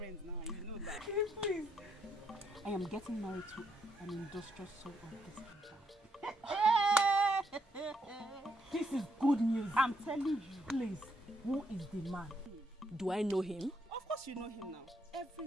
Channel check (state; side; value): normal; both; correlation 0.75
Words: now, you know that. Please. I am getting married to an industrial soul of this kingdom. This is good news. I'm telling you. Please, who is the man? Do I know him? Of course you know him now.